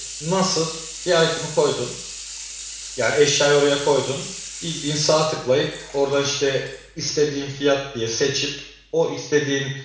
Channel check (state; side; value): identical; both; correlation 1.00